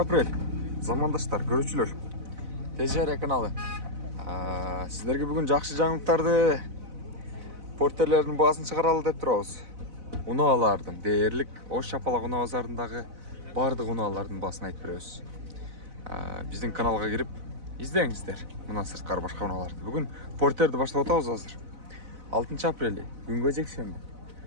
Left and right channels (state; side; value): late; left; 4.0 ms